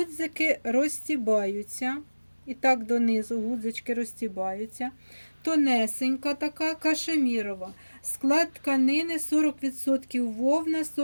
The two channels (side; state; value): both; inverted; correlation -1.00